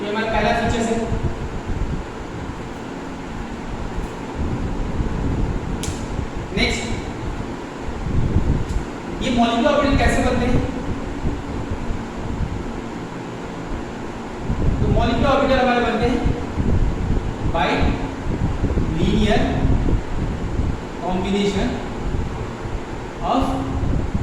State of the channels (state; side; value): identical; both; correlation 1.00